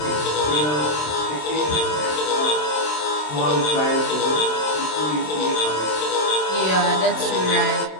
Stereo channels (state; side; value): late; right; 27 ms